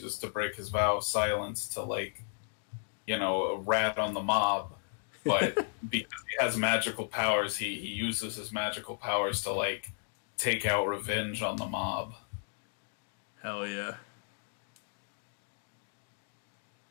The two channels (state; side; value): silent; right; digital silence